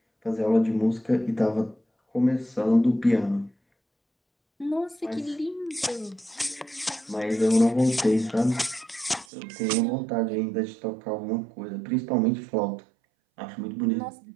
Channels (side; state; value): left; drops out; at 9.2 s